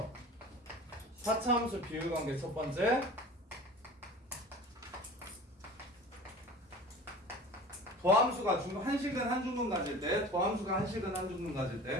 4차 함수 비율 관계 첫 번째. 더함수가 한식은 한중근 가질 때, 더함수가 한식은 한중근 가질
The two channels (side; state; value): both; normal; correlation 0.39